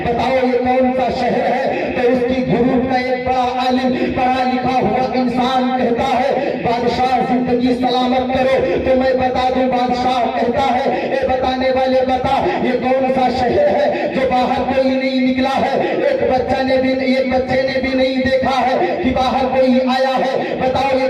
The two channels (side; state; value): both; identical; correlation 1.00